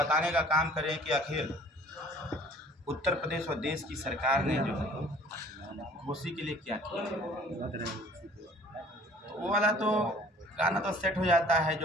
का काम करें कि आखिर उत्तर प्रदेश और देश की सरकार ने जो है घोसी के लिए क्या किया। वो वाला तो गाना तो सेट हो जाता है,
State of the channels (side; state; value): both; normal; correlation 0.52